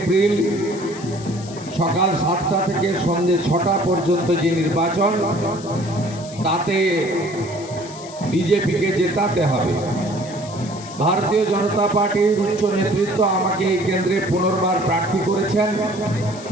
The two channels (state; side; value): noise; left; hiss, 17 dB below the sound